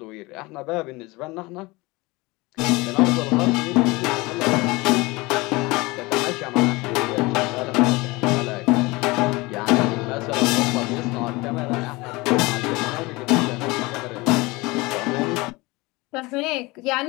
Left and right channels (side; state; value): right; quieter; 23.0 dB